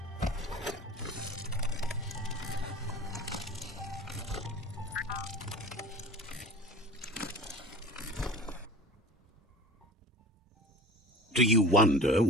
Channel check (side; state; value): both; normal; correlation 0.37